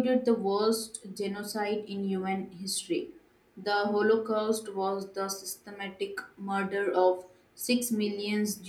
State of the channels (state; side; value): identical; both; correlation 1.00